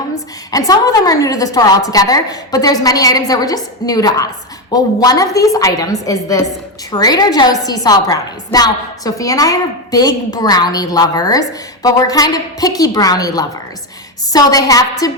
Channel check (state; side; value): normal; both; correlation 0.11